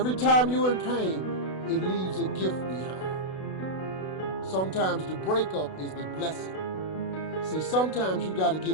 time you're in pain, it leaves a gift behind. Sometimes the breakup is the blessing. See, sometimes you got to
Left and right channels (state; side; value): late; right; 32 ms